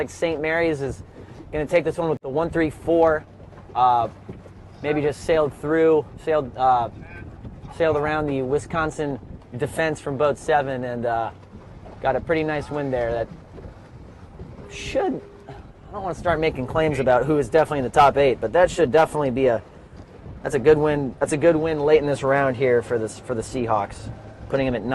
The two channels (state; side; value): identical; both; correlation 1.00